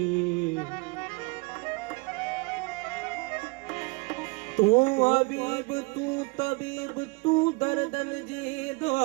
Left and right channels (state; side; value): quieter; left; 28.2 dB